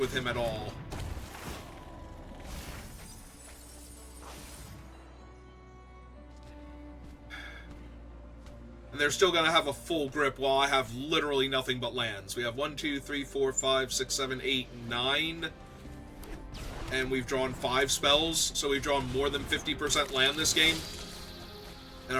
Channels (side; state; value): both; identical; correlation 1.00